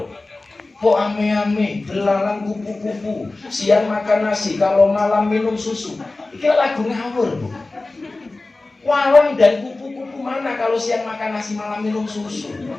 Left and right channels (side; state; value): right; quieter; 3.2 dB